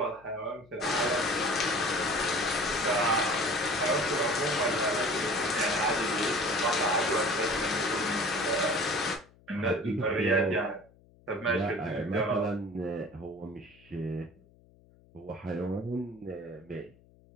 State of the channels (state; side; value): noise; left; hum, 28 dB below the sound